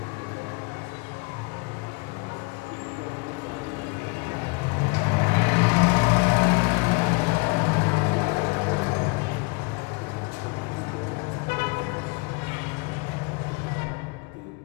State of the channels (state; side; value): quieter; right; 29.5 dB